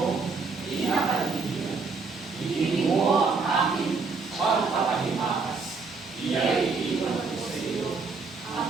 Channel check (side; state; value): left; quieter; 4.5 dB